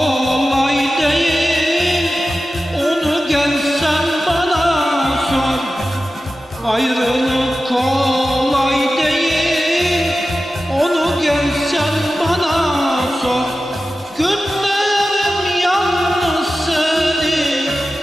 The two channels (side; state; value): both; normal; correlation 0.94